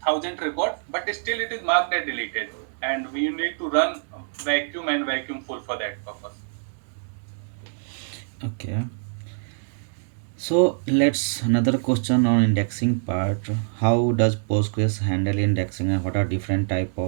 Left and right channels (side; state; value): left; silent; digital silence